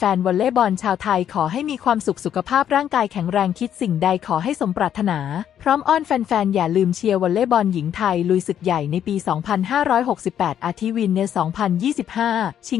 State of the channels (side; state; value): right; quieter; 9.7 dB